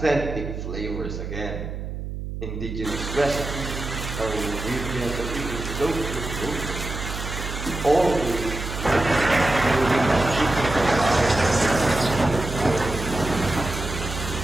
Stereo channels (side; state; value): right; noise; hum, 7 dB below the sound